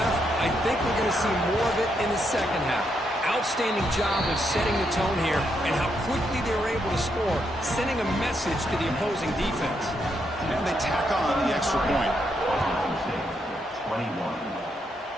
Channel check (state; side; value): normal; both; correlation 0.79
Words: I think we're going to see more of it in the second half. Outstanding job of setting the tone here and how quickly they were able to score, sending a message to the opposing defense. And they tack on the extra point. 21.